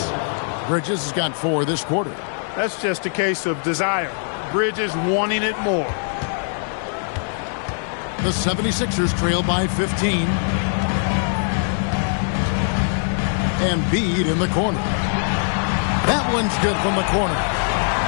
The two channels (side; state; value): right; silent; digital silence